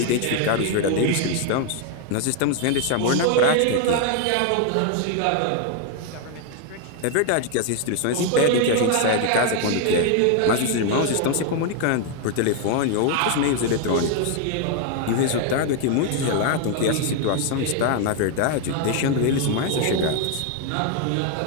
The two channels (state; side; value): different; both; correlation 0.00